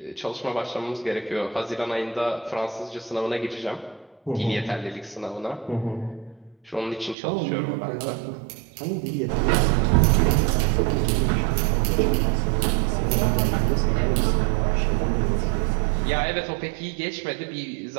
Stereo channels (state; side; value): drops out; left; at 7.2 s